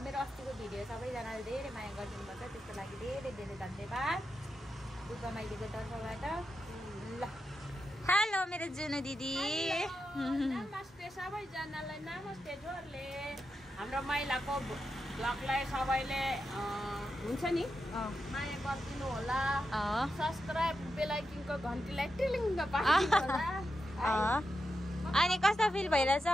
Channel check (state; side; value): normal; both; correlation 0.88